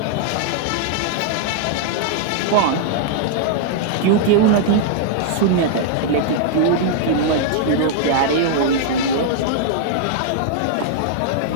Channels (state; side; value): different; both; correlation -0.01